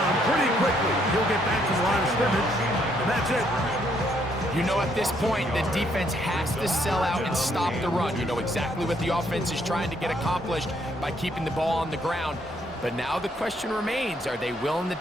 pretty quickly. He'll get back to the line of scrimmage, and that's it. You know, at this point, the defense has to sell out and stop the run. You know exactly what the offense is trying to get accomplished by keeping the ball on the ground. But now the question remains, are they willing to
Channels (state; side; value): normal; both; correlation 0.70